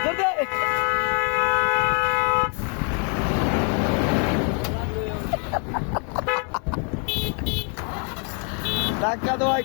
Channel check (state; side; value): quieter; right; 39.5 dB